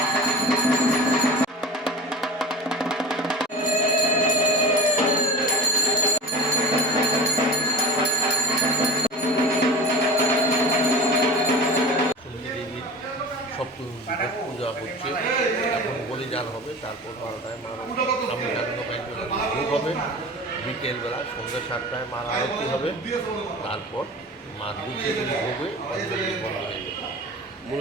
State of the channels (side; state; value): both; normal; correlation 0.35